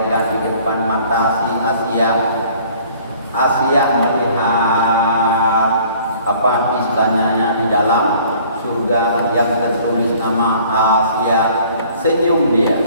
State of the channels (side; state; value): both; inverted; correlation -0.54